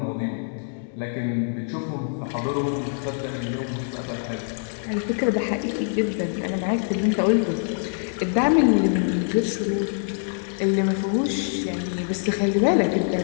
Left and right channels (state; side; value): silent; right; digital silence